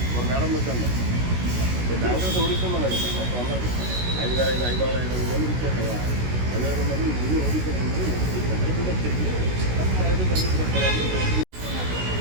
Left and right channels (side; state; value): left; late; 16 ms